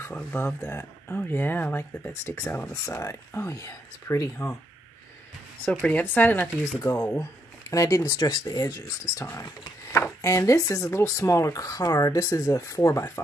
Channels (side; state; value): both; normal; correlation 0.76